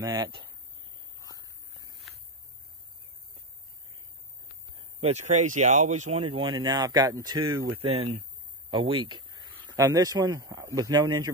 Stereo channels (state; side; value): normal; both; correlation 0.13